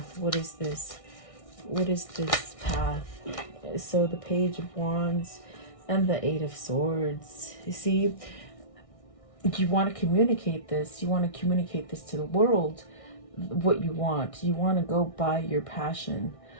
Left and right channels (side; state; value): right; late; 1.6 ms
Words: What is this? What is this path? So the Page of Wands and the 8 of Swords. You see, you want to communicate this. You want to communicate this to the world, what you want. You want to go by your passion.